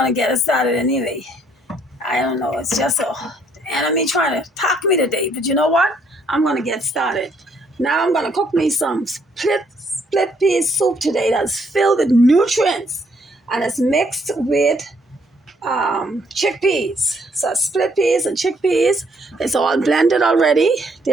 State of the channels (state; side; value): normal; both; correlation 0.68